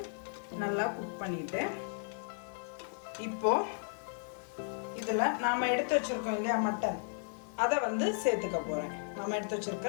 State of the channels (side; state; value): right; silent; 55 dB below the other